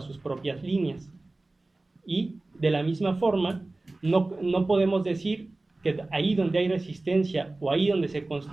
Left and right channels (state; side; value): quieter; left; 3.0 dB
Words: sus propias líneas. Y de la misma forma, no podemos decir que ahí donde hay resistencia o ahí donde se